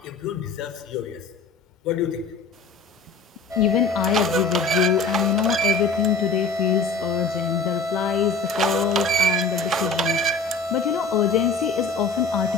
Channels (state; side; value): quieter; right; 3.7 dB